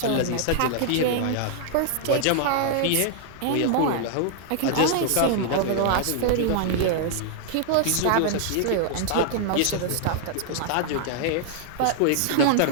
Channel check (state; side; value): different; both; correlation -0.01